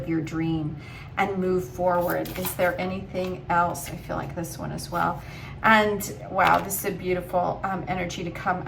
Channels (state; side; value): identical; both; correlation 1.00